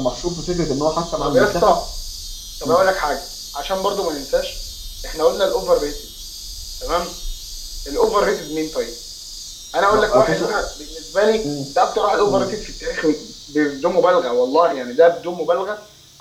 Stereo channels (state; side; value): identical; both; correlation 1.00